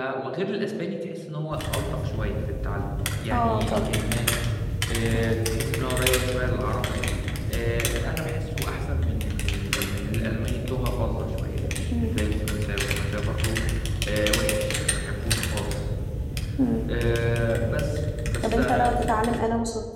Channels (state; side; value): identical; both; correlation 1.00